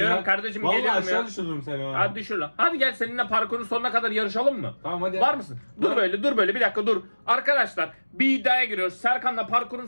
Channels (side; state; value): both; inverted; correlation -1.00